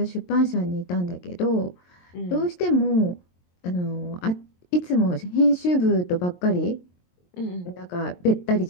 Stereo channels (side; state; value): right; late; 22 ms